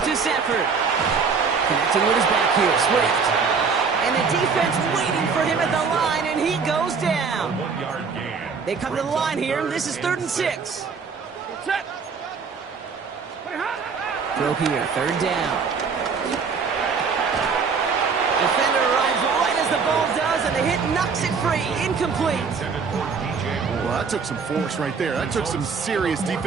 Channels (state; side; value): quieter; left; 5.4 dB